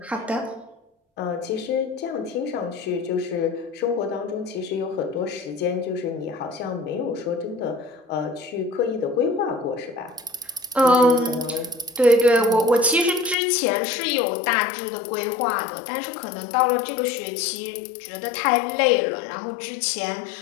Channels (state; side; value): drops out; right; at 13.4 s